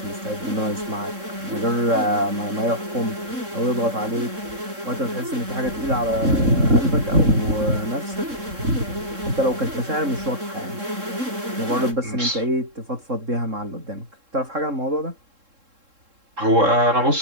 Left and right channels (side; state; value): left; late; 3.7 ms